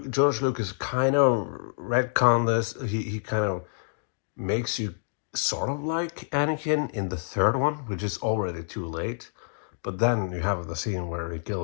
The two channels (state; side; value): silent; right; digital silence